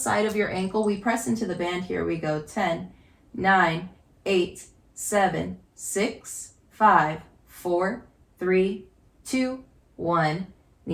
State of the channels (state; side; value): identical; both; correlation 1.00